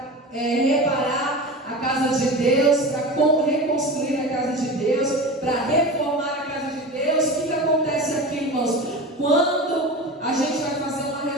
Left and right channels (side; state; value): both; normal; correlation 0.29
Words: reparar a casa de Deus, para reconstruir a casa de Deus, para reformar a casa de Deus? O que acontece aqui, irmãos? Quando a gente vai fazer uma